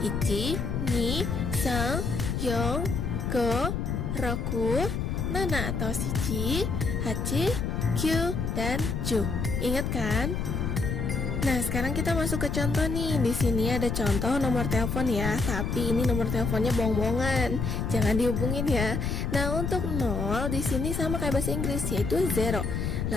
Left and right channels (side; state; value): left; noise; rumble, 1 dB below the sound